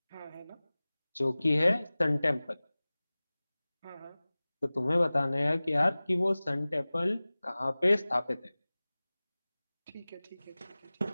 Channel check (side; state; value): both; inverted; correlation -0.99